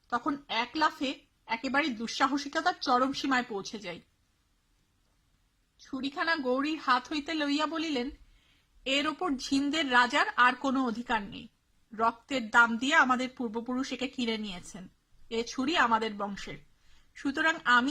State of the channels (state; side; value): identical; both; correlation 1.00